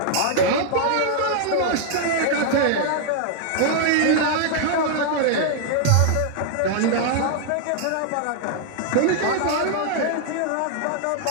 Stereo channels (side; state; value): both; different; correlation 0.00